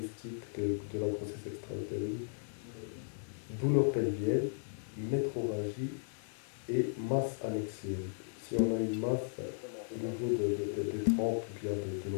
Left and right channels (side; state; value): right; silent; digital silence